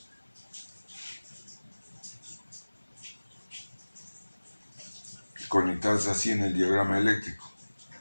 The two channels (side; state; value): both; inverted; correlation -1.00